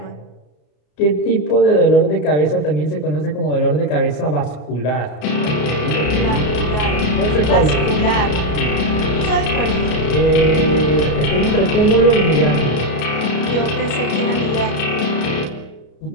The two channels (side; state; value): right; late; 33 ms